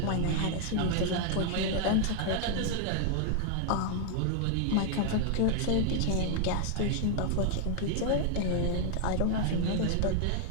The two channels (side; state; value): both; different; correlation 0.00